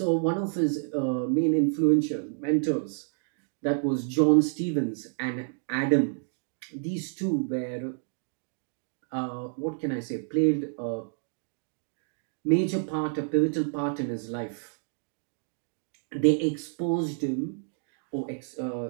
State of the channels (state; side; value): silent; left; digital silence